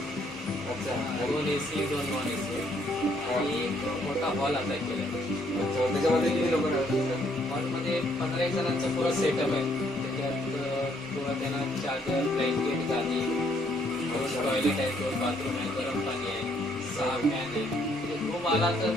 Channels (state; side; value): normal; both; correlation 0.68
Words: अच्छा. 2 AC, 2 नॉन AC आणि एक मोठा हॉल आता केला. अच्छा, त्याच्यामध्ये किती लोक राहतात? हॉलमध्ये 15 जणांचा पुरा सेटअप आहे. त्याच्यात पुरा त्यांना चार्जर, ब्लँकेट, गादी, टॉयलेट आहे, 2 बाथरूम आहे, गरम पाणी आहे, 6 फॅन आहे. म्हणजे रूम आला तर